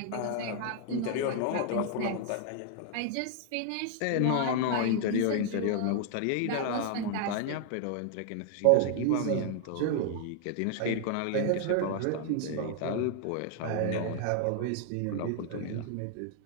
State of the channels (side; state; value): both; different; correlation 0.00